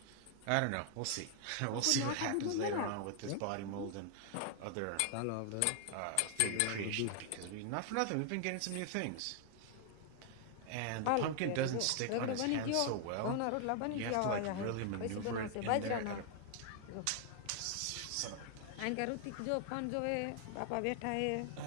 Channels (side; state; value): both; different; correlation 0.00